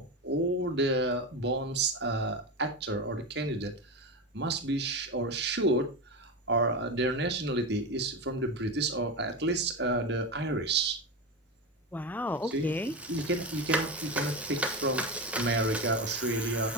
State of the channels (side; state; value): both; normal; correlation 0.19